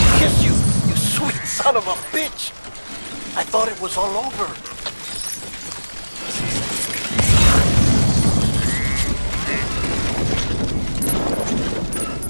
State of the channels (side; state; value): both; inverted; correlation -1.00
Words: kiss you, you sweet son of a bitch! I thought it was all over.